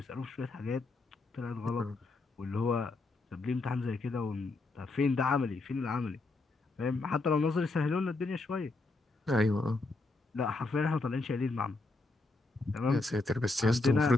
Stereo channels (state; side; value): quieter; right; 3.4 dB